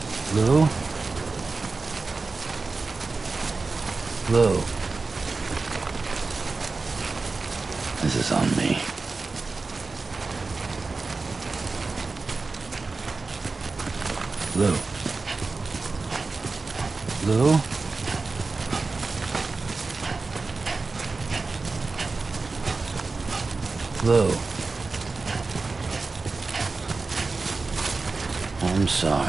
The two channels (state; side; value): quieter; left; 3.9 dB